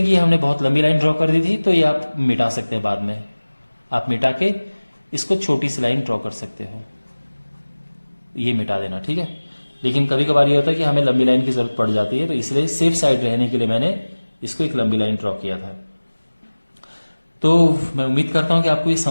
कि हमने बहुत लंबी लाइन ड्रॉ कर दी थी, तो ये आप मिटा सकते हैं बाद में, आप मिटा के इसको छोटी सी लाइन ड्रॉ कर सकते हो, ये मिटा देना, ठीक है। लेकिन कभी कभार ये होता है कि हमें लंबी लाइन की जरूरत पड़ जाती है, तो इसलिए सेफ साइड रहने के लिए मैंने इसको एक लंबी लाइन ड्रॉ किया था। तो मैं उम्मीद करता हूं कि आपको ये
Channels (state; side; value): inverted; both; correlation -1.00